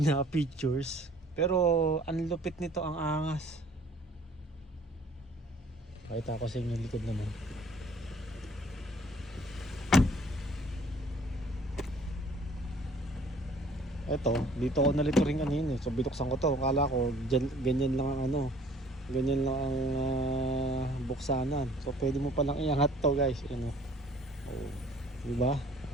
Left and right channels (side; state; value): both; normal; correlation 0.55